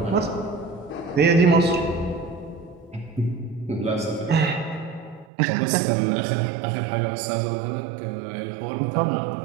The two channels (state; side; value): drops out; left; at 5.2 s